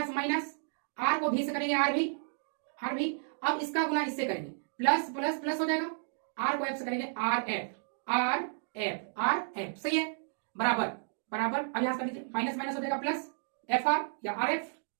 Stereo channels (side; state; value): left; silent; digital silence